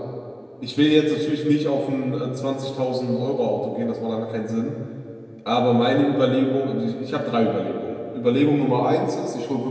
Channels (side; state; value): both; identical; correlation 1.00